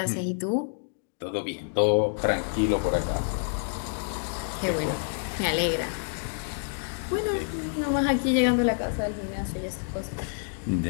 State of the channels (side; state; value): right; silent; digital silence